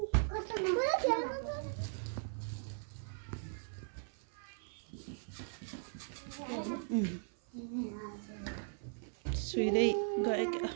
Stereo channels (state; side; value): silent; left; 52 dB below the other